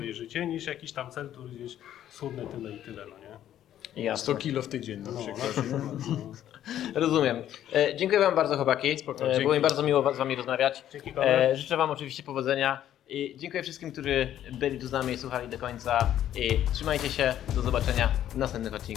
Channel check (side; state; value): right; quieter; 11.4 dB